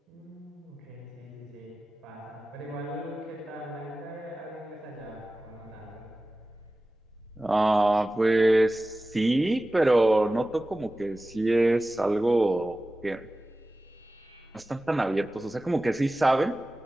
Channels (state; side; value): normal; both; correlation 0.96